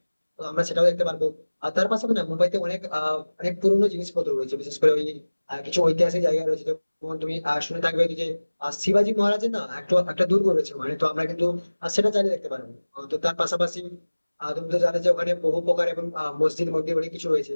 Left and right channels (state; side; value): inverted; both; correlation -1.00